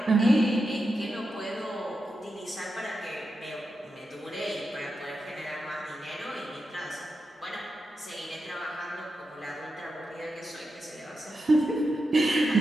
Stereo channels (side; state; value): both; normal; correlation 0.88